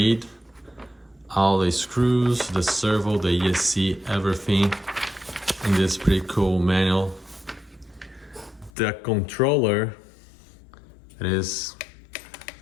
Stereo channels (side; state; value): right; drops out; at 8.7 s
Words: All the screws, the servo, the ESC, everything in this pretty cool manual. The controller,